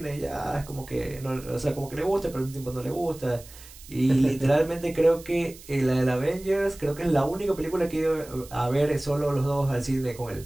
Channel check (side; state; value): right; noise; hiss, 19 dB below the sound